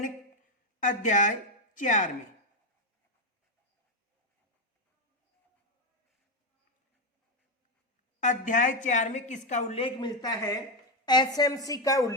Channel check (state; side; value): normal; both; correlation 0.06